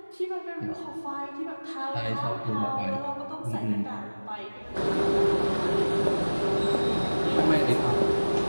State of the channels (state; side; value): inverted; both; correlation -1.00